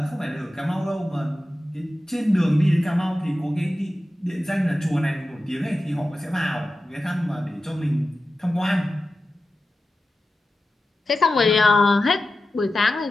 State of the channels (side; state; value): both; normal; correlation 0.93